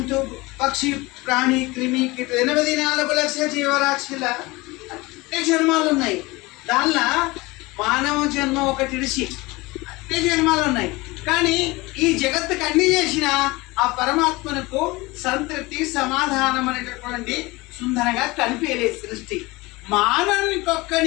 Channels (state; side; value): quieter; right; 22.4 dB